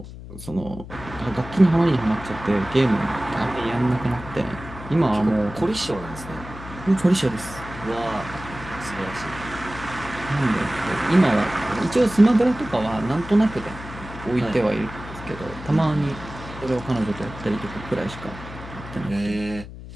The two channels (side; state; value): left; noise; hum, 13 dB below the sound